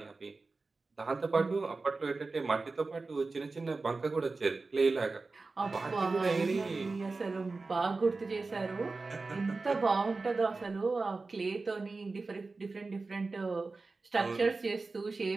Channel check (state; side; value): quieter; left; 3.8 dB